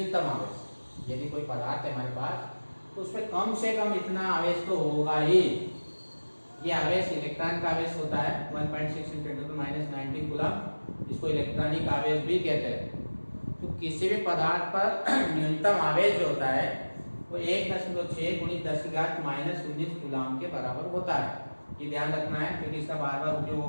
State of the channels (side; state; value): both; inverted; correlation -1.00